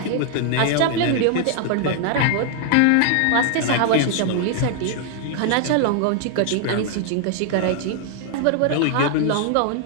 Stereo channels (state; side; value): different; both; correlation 0.00